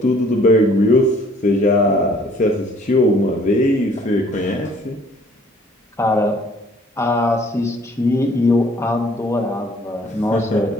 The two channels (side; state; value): both; normal; correlation 0.58